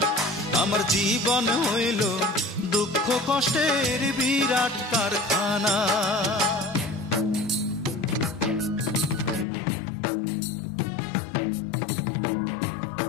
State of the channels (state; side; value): drops out; right; at 9.5 s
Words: আমার জীবন হইল দুঃখ কষ্টের বিরাট কারখানা।